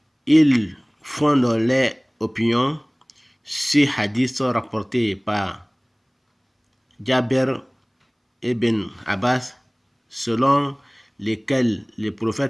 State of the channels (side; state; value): both; identical; correlation 1.00